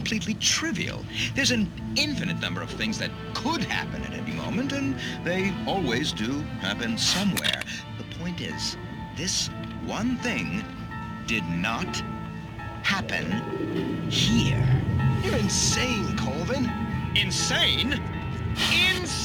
trivial. There's an infinite number of things that could happen at any moment, and they always do happen somewhere. The point is, this one thing did not happen here. You're insane, Colvin. Insane?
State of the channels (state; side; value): identical; both; correlation 1.00